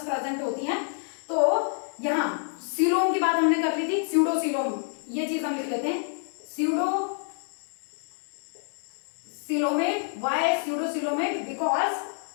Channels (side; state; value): right; silent; digital silence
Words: प्रेजेंट होती हैं। तो यहाँ सीलोम की बात हमने कर ली थी, स्यूडोसीलोम, ये चीज हम लिख लेते हैं, pseudo coelomate, why pseudocoelomate, because